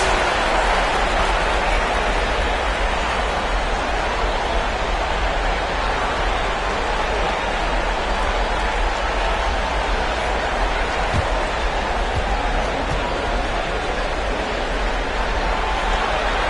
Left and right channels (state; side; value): identical; both; correlation 1.00